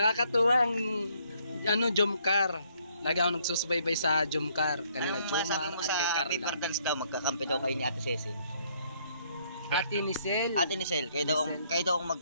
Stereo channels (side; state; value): both; inverted; correlation -0.68